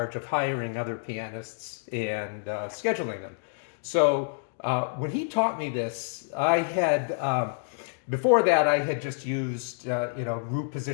of hiring other pianists and scheduling them. So when he taught me this, I had before that I had just used root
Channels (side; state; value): right; silent; digital silence